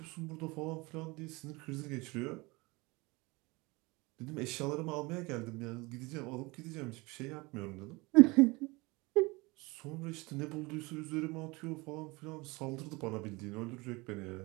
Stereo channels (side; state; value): left; quieter; 24.5 dB